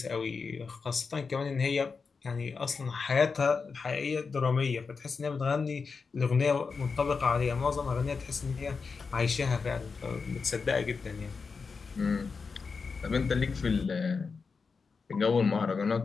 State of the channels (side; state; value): right; quieter; 5.0 dB